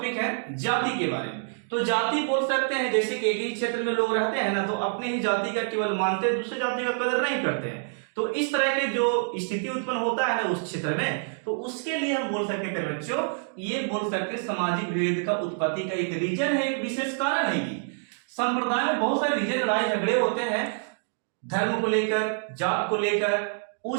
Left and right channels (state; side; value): silent; left; digital silence